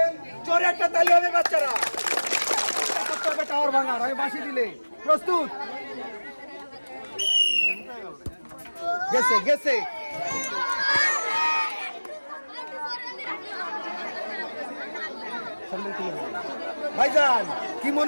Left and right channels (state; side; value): inverted; both; correlation -1.00